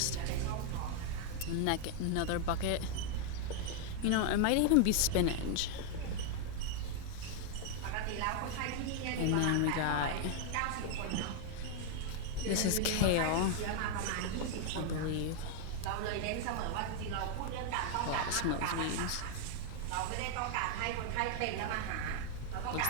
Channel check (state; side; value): different; both; correlation 0.00